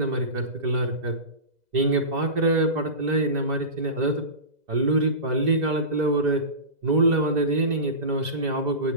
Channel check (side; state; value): left; late; 2.0 ms